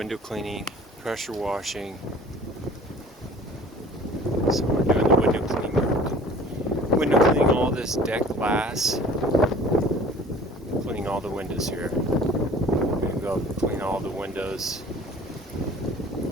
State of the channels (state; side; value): normal; both; correlation 0.48